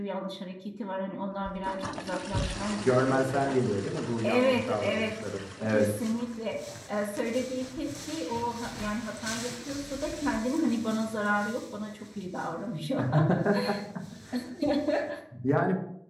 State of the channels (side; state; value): both; identical; correlation 1.00